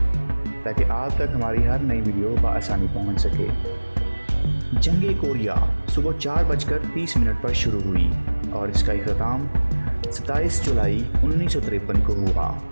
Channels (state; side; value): inverted; both; correlation -1.00